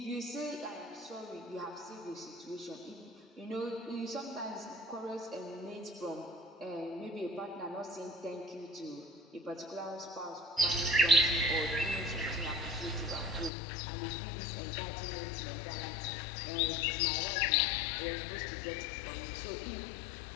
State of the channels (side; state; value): right; drops out; at 13.5 s